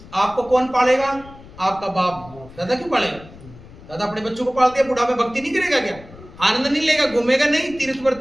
आपको कौन पालेगा? आपका बाप। दादा क्यों पालेगा? दादा अपने बच्चों को पालते हैं, बुढ़ा में भक्ति नहीं करेगा क्या? आनंद नहीं लेगा, घूमेगा नहीं,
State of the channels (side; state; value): left; noise; rumble, 19 dB below the sound